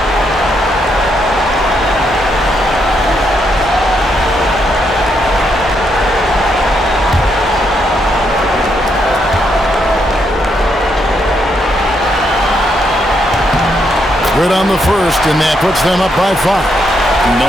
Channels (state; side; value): normal; both; correlation 0.78